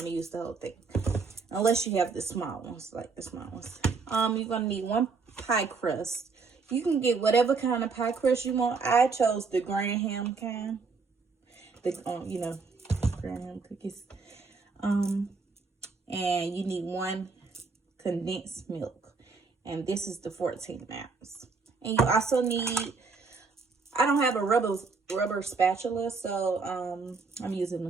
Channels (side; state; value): left; quieter; 4.6 dB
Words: to use the whole thing. Unless you have the small ones, like the small ones. You're going to need 1 pie crust. You can get whatever kind of pie crust you want. I chose the Graham kind. The, Graham cookies. And you need 1 condensed milk. And this is the 14 ounce. And you also need, I don't have a rubber spatula, so I'm using